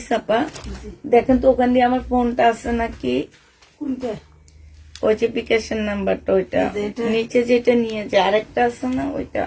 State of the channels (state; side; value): identical; both; correlation 1.00